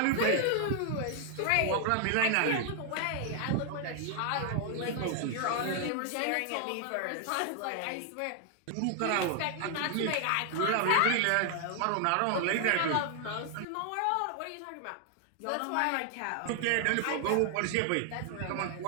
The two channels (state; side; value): different; both; correlation 0.00